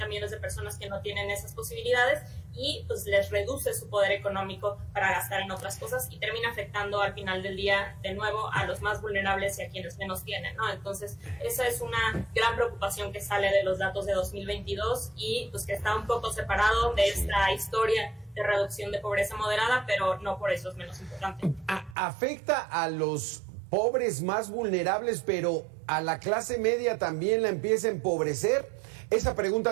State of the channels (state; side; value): drops out; left; at 22.0 s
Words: millones de personas que no tienen esas posibilidades, y pues les reduce su poder económico para gastar en otras cosas y termina afectando al final del día de nuevo a los más vulnerables y a quienes menos tienen, ¿no? Entonces esa es una gran preocupación que sale de los datos de 2022 y pues que está un poco separado de esta historia de reducción de pobreza moderada, pero no por eso es menos importante. Afecta a los pobres más vulnerables, pero a la clase media también la empieza a empobrecer. Esa